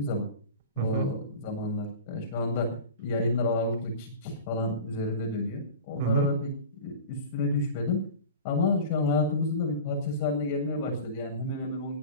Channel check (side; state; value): both; inverted; correlation -0.34